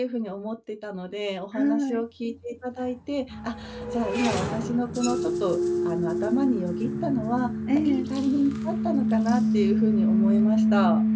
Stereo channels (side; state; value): both; identical; correlation 1.00